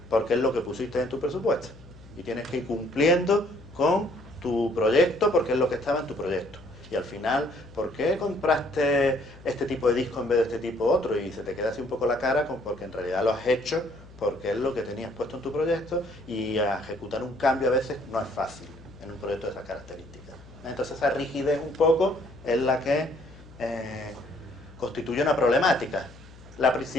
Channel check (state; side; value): noise; left; hum, 20 dB below the sound